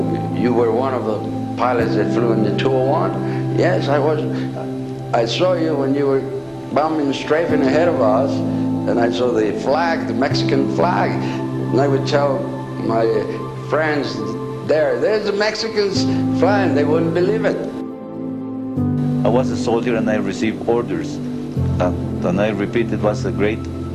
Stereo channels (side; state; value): both; identical; correlation 1.00